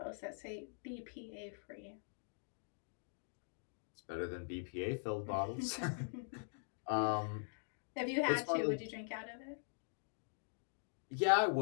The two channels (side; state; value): right; silent; digital silence